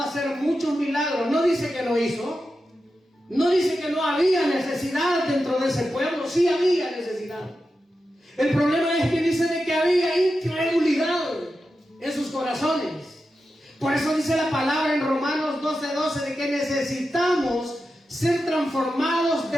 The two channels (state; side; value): normal; both; correlation 0.90